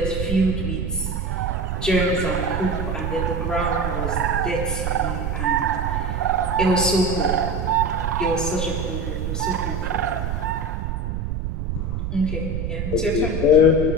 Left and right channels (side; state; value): right; noise; rumble, 2 dB below the sound